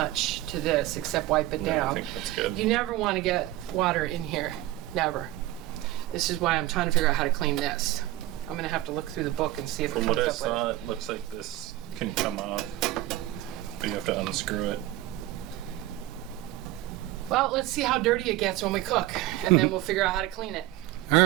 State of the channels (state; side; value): quieter; left; 16.0 dB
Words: to this except wipe it Yeah, I down. think that's good. You never want to get water in here. Never. This is why I'm trying to figure out how to clean this. I'm going to have to look through the book and see if From it what comes I up saw, with it looks like this can come off, but you have to unscrew it. Well, let's see how dirty it gets when we cook, and then we'll figure out how to clean it. All